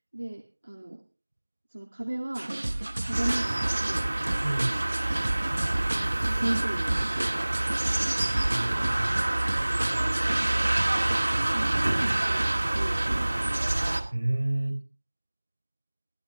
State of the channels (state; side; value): inverted; both; correlation -1.00